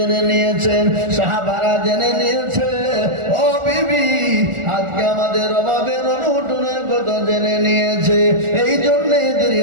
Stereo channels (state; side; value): late; left; 1.4 ms